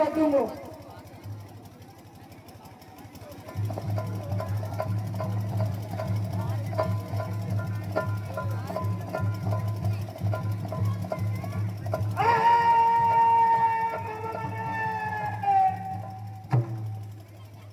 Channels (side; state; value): both; identical; correlation 1.00